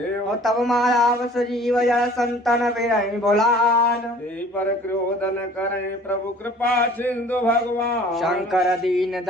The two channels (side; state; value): both; normal; correlation 0.50